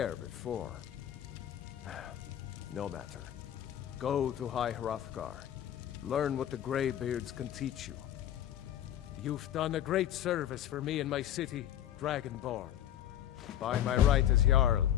before. No matter. Go to High Hrothgar. Learn what the Greybeards can teach you. You've done a great service for me and my city, Dragonborn. By my right as Jarl,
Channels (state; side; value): quieter; right; 11.1 dB